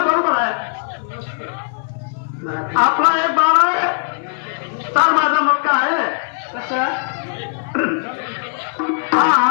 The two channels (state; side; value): silent; right; 60 dB below the other